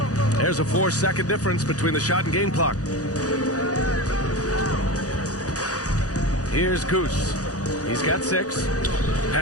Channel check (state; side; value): late; right; 0.67 ms